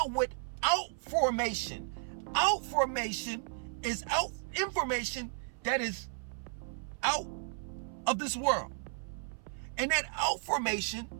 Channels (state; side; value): silent; left; 55 dB below the other